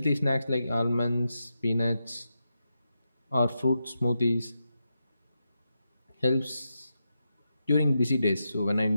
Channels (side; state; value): both; inverted; correlation -0.87